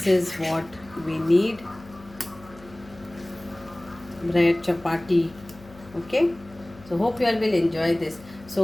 is what we need: bread, chapati. Okay, so hope you all will enjoy this.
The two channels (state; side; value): noise; left; hum, 22 dB below the sound